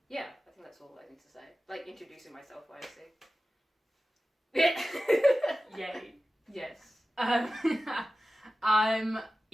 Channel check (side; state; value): both; normal; correlation 0.95